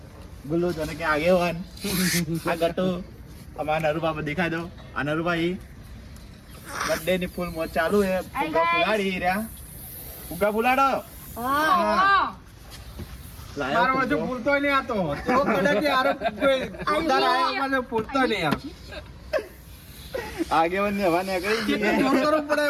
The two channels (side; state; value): both; identical; correlation 1.00